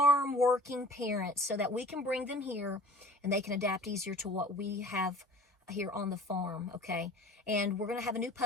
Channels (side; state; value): both; normal; correlation 0.45